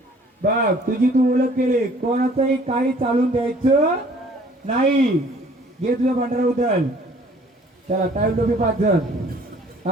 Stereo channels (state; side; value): normal; both; correlation 0.55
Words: बघ तुझी तू ओळख केली. कोणाचंही काही चालून द्यायचं नाही. घे तुझं भांडारा उचल. चला टावेल टोपी 5 जण.